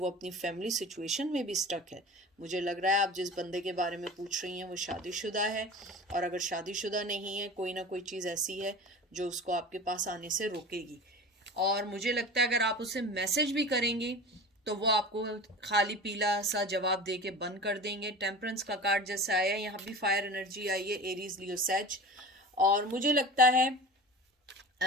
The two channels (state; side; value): normal; both; correlation 0.35